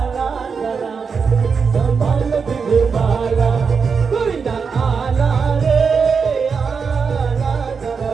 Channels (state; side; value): quieter; left; 5.6 dB